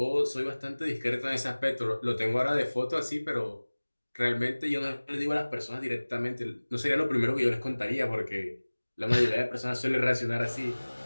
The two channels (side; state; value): both; inverted; correlation -1.00